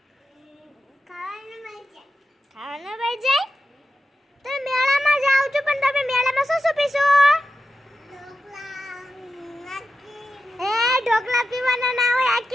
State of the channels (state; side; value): normal; both; correlation 0.90